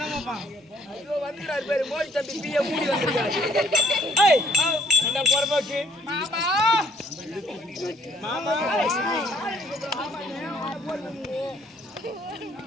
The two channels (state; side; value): normal; both; correlation 0.61